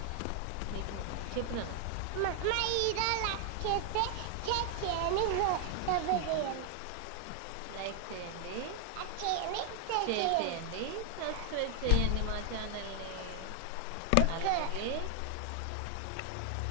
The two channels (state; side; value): different; both; correlation 0.00